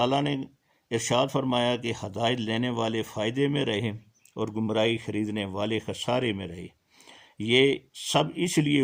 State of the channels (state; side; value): identical; both; correlation 1.00